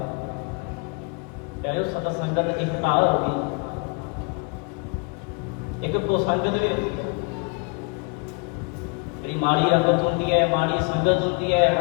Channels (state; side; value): quieter; right; 32.7 dB